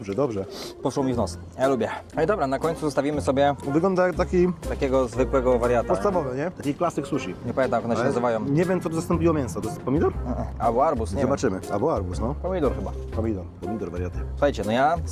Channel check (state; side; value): identical; both; correlation 1.00